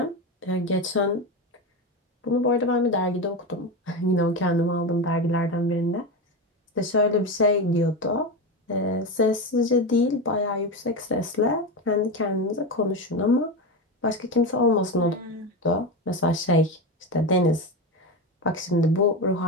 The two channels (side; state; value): both; normal; correlation 0.18